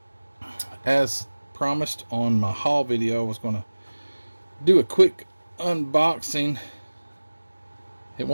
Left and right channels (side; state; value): both; inverted; correlation -1.00